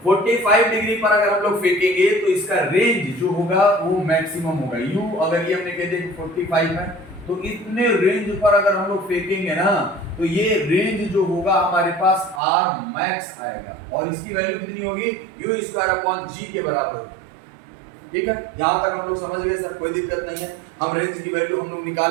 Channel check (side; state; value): left; drops out; at 12.4 s